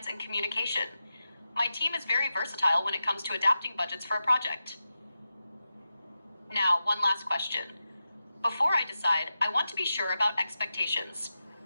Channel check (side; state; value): both; inverted; correlation -0.91